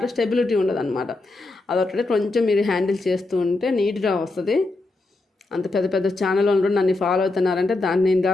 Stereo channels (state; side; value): quieter; right; 3.1 dB